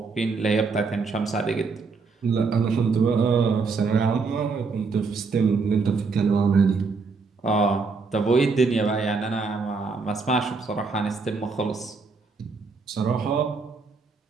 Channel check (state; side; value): quieter; left; 4.5 dB